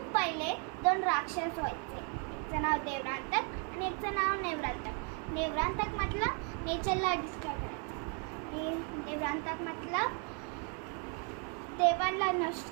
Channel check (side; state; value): left; quieter; 38.7 dB